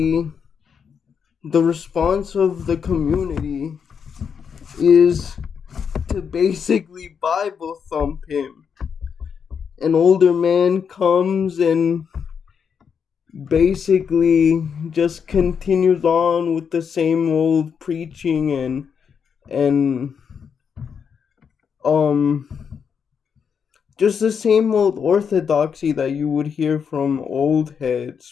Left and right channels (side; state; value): right; quieter; 6.8 dB